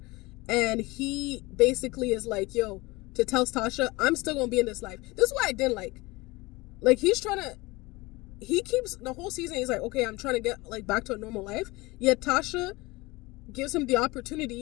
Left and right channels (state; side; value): quieter; right; 22.6 dB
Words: And he basically is like, yo, to tell Tasha, I'm still going to be in this life. This is what I didn't like. Like, he keeps the whole season, he's like, okay, I'm trying to get like back to a normal life. Yet Tasha gives him the